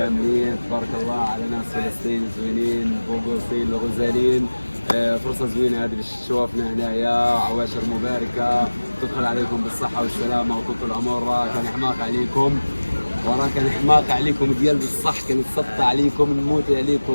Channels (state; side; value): inverted; both; correlation -1.00